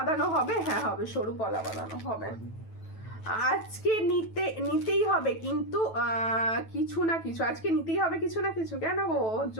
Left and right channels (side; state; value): right; late; 9.1 ms